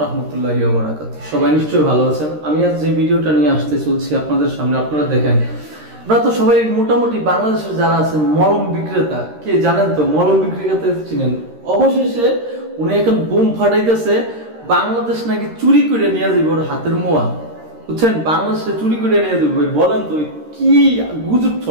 রাহমাতুল্লাহি ওয়া বারাকাতুহু। সবাই নিশ্চয়ই ভালো আছেন। আমি আজ যে ভিডিওটা নিয়ে আসতে চলছি আপনাদের সামনে, আপনারা দেখেন, আপনারা তো সবাই মোটামুটি বাংলাদেশের যারা আছেন মলম বিক্রেতা, কে জানেন তো মলম বিক্রেতা চিনেন। অবশেষে উনি এখন বুম ফাটাইতেছে, বাংলাদেশ নাকি চুরি করে নিয়ে যাবে ওর হাতের মোয়া, বুঝছেন? বাংলাদেশে চুরি করে নিয়ে যাবে। বলেন তো কি গুজব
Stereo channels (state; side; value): late; left; 13 ms